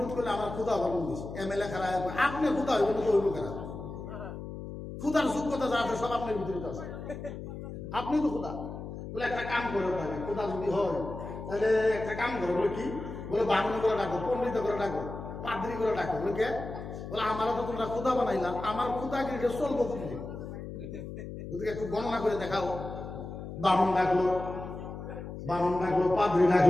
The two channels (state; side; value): noise; left; hum, 9 dB below the sound